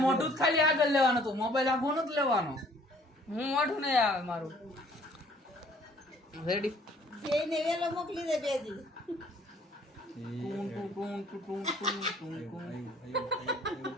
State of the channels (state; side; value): normal; both; correlation 0.58